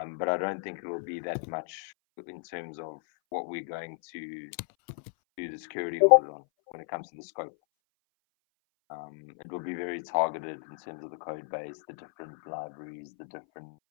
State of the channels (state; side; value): silent; right; 56 dB below the other